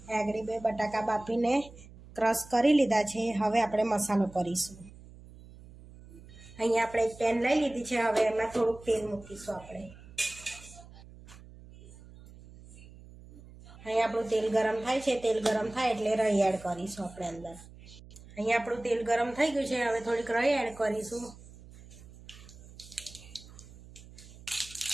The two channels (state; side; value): noise; right; hum, 19 dB below the sound